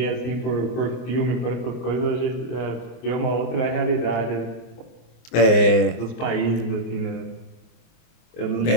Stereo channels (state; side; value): late; right; 24 ms